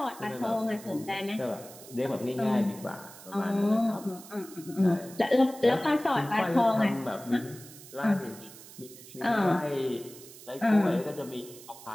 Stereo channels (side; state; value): right; noise; hiss, 18 dB below the sound